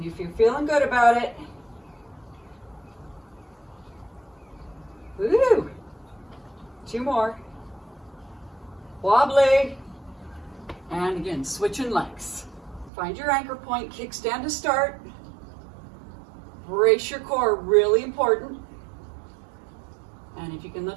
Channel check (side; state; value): left; drops out; at 12.9 s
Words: if you're feeling good about it, woo! 2 more. Wobbly. And again, switching legs. Find your anchor point, kickstand to start. Brace your core, really important. And if you can